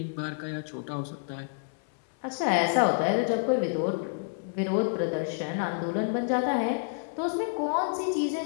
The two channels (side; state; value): right; silent; 59 dB below the other